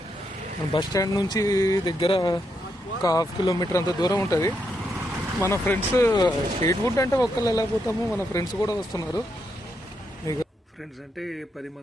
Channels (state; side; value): normal; both; correlation 0.80